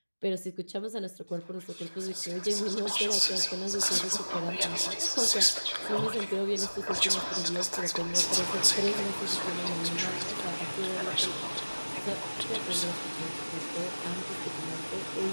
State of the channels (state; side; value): inverted; both; correlation -1.00